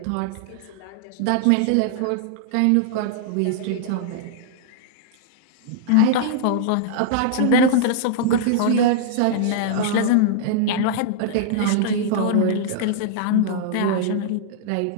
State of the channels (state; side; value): different; both; correlation -0.01